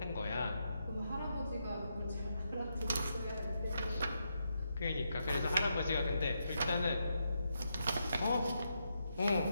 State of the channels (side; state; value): both; inverted; correlation -0.82